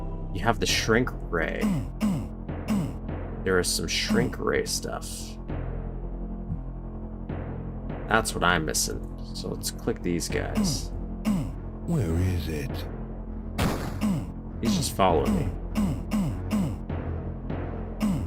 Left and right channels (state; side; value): identical; both; correlation 1.00